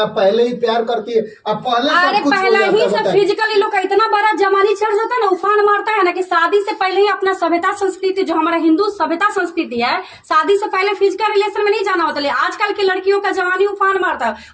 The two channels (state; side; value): identical; both; correlation 1.00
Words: पहले ही प्यार करती है, अब पहले अरे सब कुछ हो पहला ही जाता सब है। फिजिकली लोग का इतना बड़ा जमानी चढ़ जाता है ना, उफान मारता है ना, कि शादी से पहले ही अपना सभ्यता संस्कृति, जो हमारा हिंदू सभ्यता संस्कृति है, शादी से पहले फिजिकल रिलेशन में नहीं जाना होता। लेकिन आजकल की लड़कियों का जवानी उफान मारता है,